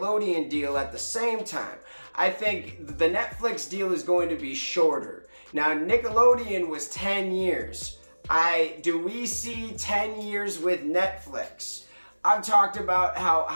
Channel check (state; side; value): inverted; both; correlation -1.00